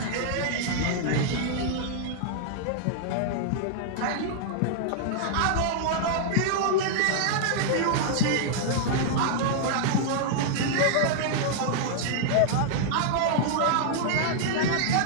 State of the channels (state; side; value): different; both; correlation -0.01